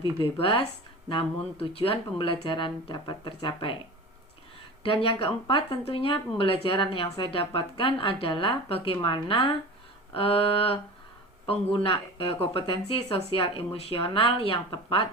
bebas, namun tujuan pembelajaran dapat tercapai. Dan yang keempat, tentunya pembelajaran yang saya dapatkan adalah bagaimana kompetensi sosial emosional yang tepat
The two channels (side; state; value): both; normal; correlation 0.34